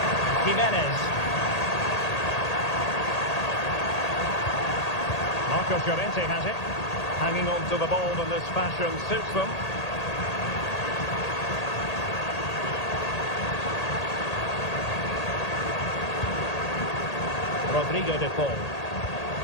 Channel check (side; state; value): right; late; 1.8 ms